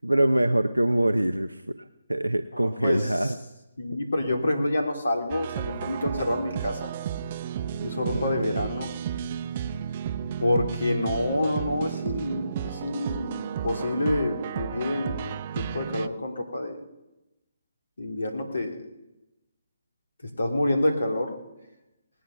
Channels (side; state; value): both; inverted; correlation -0.86